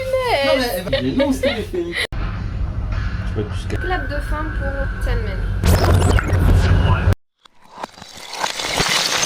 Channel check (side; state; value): both; identical; correlation 1.00